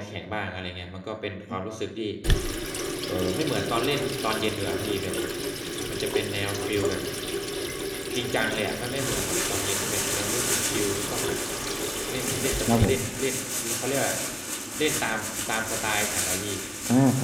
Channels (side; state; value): both; identical; correlation 1.00